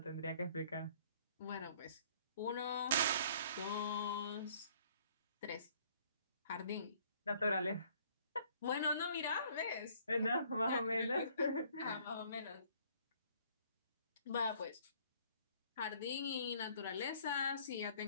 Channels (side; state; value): both; inverted; correlation -0.59